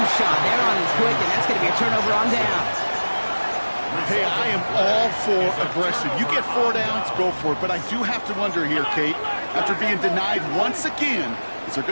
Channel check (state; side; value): inverted; both; correlation -1.00